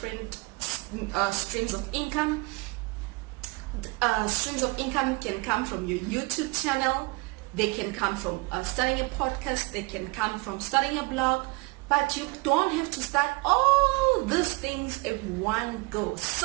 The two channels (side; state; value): left; quieter; 26.4 dB